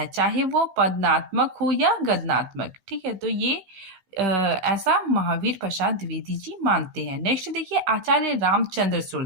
चाहे वो पदनात्मक हो या गद्यात्मक। ठीक है, तो ये ऐसा महावीर प्रसाद द्विवेदी जी मानते हैं। नेक्स्ट देखिए, आचार्य रामचंद्र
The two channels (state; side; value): late; left; 16 ms